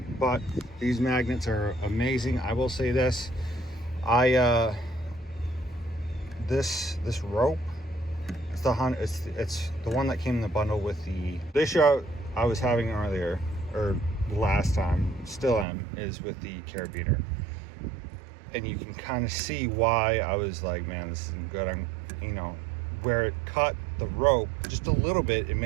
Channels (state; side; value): drops out; left; at 15.7 s